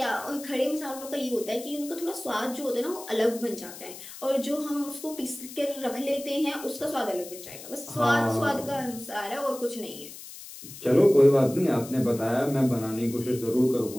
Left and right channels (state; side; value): noise; left; hiss, 14 dB below the sound